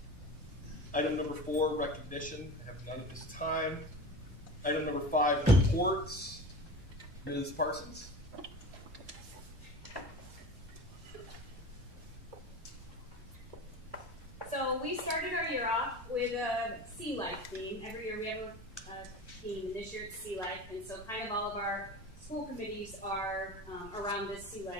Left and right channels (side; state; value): both; normal; correlation 0.32